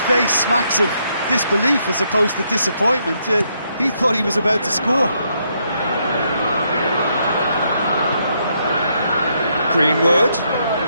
face smacks of disbelief as opposed to disappointment. He thought he was about to score. Greenwood.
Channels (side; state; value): both; inverted; correlation -0.76